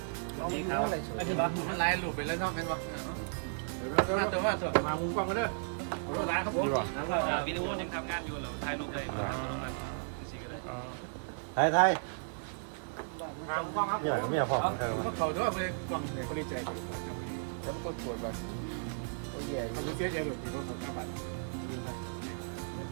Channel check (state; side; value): silent; left; digital silence